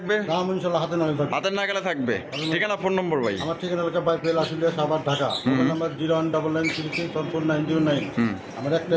দাম ইনশাআল্লাহ হাতে নাগালে থাকবে। হাতের নাগালে থাকবে। ঠিকানা ফোন নম্বর ভাই? আমার ঠিকানা এলাকা বাইপেল আসলে সাভার ঢাকা, মোবাইল নাম্বার 019964499। আমার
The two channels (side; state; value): both; identical; correlation 1.00